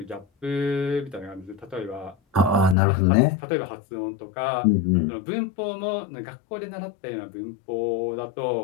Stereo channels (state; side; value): drops out; right; at 2.8 s